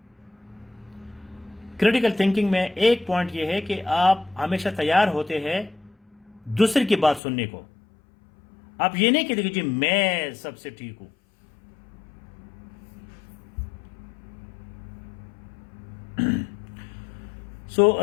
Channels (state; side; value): drops out; right; at 7.2 s